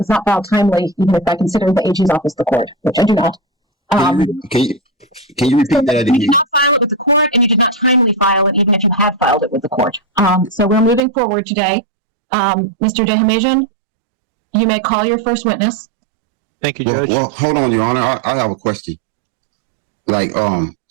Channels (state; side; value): drops out; left; at 11.0 s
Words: not filed timely, even if I consider the AG's office the court, which I do not. Can you repeat that You again? did not file it with the court and you did not timely file it, even if you had filed it with the court. So we're moving forward today. Mr. Dehamajian, you may call your first witness. Thank you, Judge. Well, hold on, Your Honor. I have a question. Like,